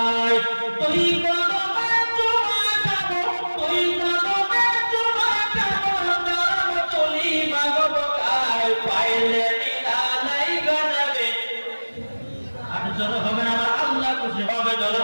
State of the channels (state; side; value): inverted; both; correlation -1.00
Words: তুই কদমে চুমা খাবো তুই কদমে চুমা খাবো নরম তুলি মাগবো গায় পাইলে নিরালাই গো নবী আর জোরে হবে না আমার আল্লাহ খুশি হবে জোরে